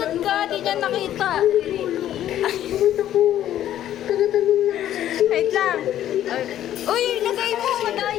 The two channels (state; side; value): quieter; right; 11.9 dB